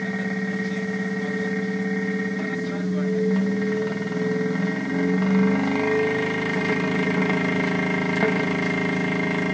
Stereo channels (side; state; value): both; identical; correlation 1.00